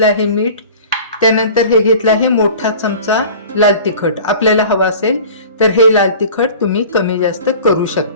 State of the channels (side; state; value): both; inverted; correlation -0.42